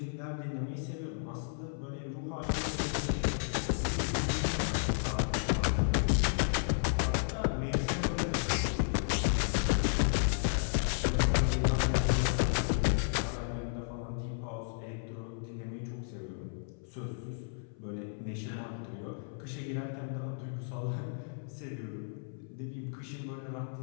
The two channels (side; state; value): right; silent; 56 dB below the other